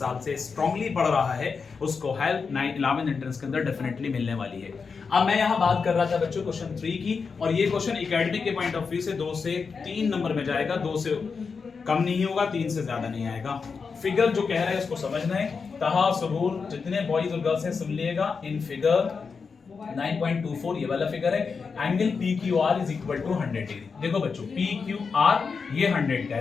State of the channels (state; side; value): quieter; right; 5.3 dB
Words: से स्ट्रांगली पढ़ रहा है उसको हेल्प 11th एंट्रेंस के अंदर डेफिनेटली मिलने वाली है। अब मैं यहाँ बात कर रहा था बच्चों क्वेश्चन 3 की, और ये क्वेश्चन एकेडमिक के पॉइंट ऑफ व्यू से 2 से 3 नंबर में जाएगा, 2 से कम नहीं होगा, 3 से ज्यादा नहीं आएगा। फिगर जो कह रहा है उसको समझना है। तहा सबूर जितने बॉयज और गर्ल्स हैं सुन लिएगा। इन फिगर 9.24 ये वाला फिगर है। Angle PQR is equal to 100 degree. देखो बच्चों PQR ये 100 का